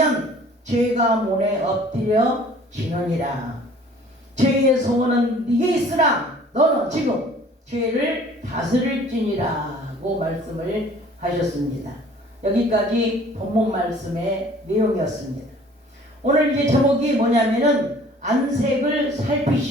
죄가 문에 엎드려 지느니라. 죄의 소원은 네게 있으나 너는 지금 죄를 다스릴지니라고 말씀을 하셨습니다. 여기까지 본문 말씀의 내용이었습니다. 오늘 이제 제목이 뭐냐면은 안색을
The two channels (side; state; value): both; normal; correlation 0.52